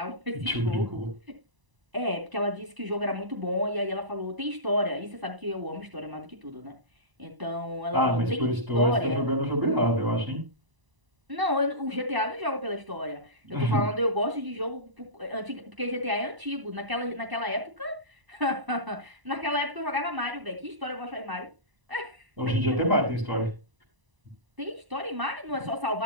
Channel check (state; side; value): late; left; 1.0 ms